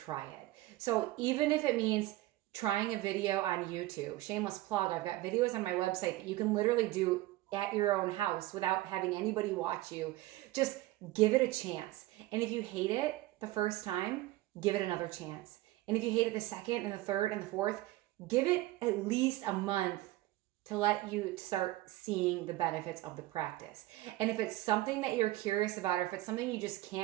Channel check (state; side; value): quieter; left; 17.4 dB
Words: it. So even if it means trying a video on YouTube, shameless plug, I've got videos on my website that you can literally do at your own house without having anybody watch you. Just give it a chance. And if you hate it the first time, give it another chance. And if you hate it the second and the third and the fourth, give it at least a month to let you start seeing the benefits of the practice. And if it's something that you're curious about, or if it's something you just